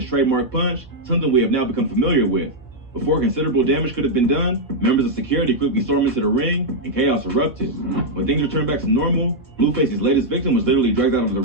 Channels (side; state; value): both; normal; correlation -0.03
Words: trademark punch, something we have now become familiar with. Before considerable damage could have been done, members of security quickly stormed into the ring and chaos erupted. When things returned back to normal, Blueface's latest victim was literally dragged out of the